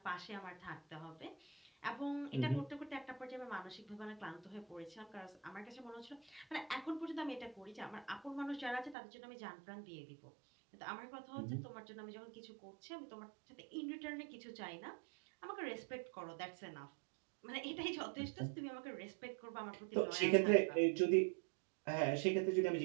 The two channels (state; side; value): drops out; left; at 9.0 s